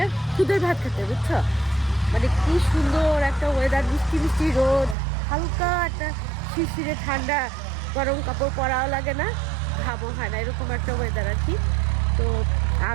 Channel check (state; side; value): drops out; left; at 5.0 s